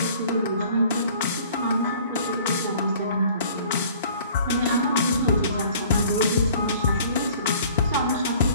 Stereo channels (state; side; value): inverted; both; correlation -0.52